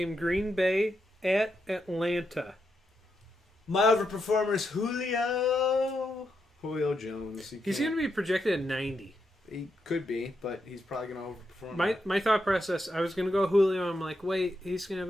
Green Bay at Atlanta. My overperformer is Julio Jones. He's going to be projected at 90. He could be, but he's probably going to overperform. My thought process, I was going to go Julio. I'm like, wait, he's going to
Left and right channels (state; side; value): normal; both; correlation 0.83